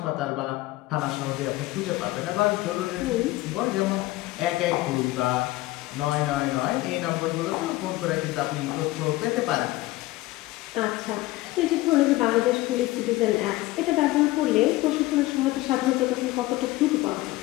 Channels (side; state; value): right; quieter; 18.4 dB